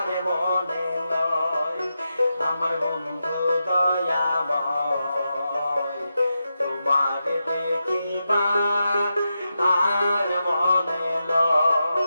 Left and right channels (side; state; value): both; inverted; correlation -0.88